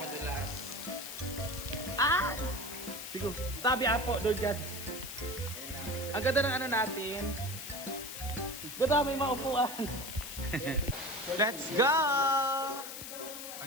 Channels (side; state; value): left; noise; hiss, 9 dB below the sound